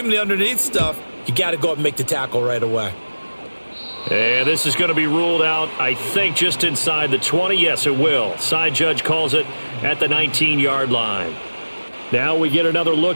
him the underneath stuff. You got to go up and make the tackle right away. And this is going to be ruled out, I think, just inside the 20. Yes, it will. Side judge calls it at the 19-yard line. Now we get another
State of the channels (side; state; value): both; inverted; correlation -1.00